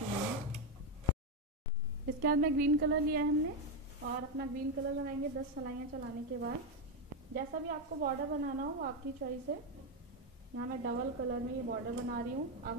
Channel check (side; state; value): both; normal; correlation 0.06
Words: इसके बाद में ग्रीन कलर लिया है हमने और अपना ग्रीन कलर लगाएंगे 10 सलाइयाँ चलाने के बाद। जैसा भी आपको बॉर्डर बनाना हो आपकी चॉइस है। यहाँ मैं डबल कलर में ये बॉर्डर बना रही हूँ। अब